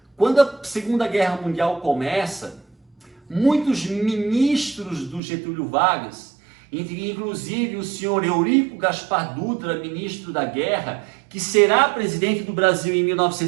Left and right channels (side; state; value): left; drops out; at 5.2 s